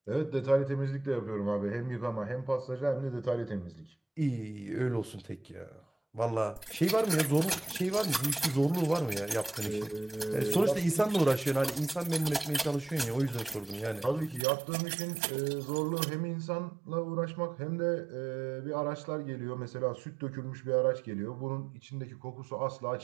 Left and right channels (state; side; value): drops out; left; at 14.5 s